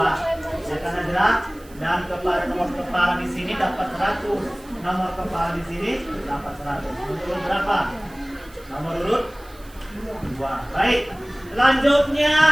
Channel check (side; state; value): right; noise; hiss, 25 dB below the sound